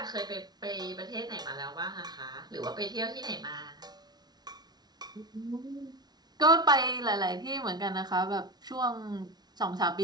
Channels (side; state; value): left; late; 0.19 ms